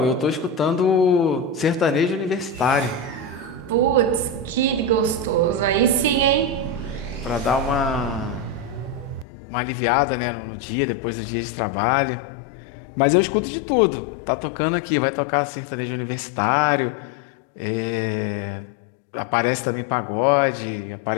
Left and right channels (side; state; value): right; drops out; at 9.2 s